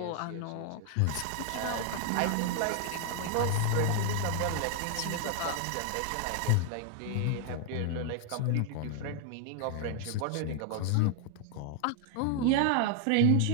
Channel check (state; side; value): different; both; correlation 0.00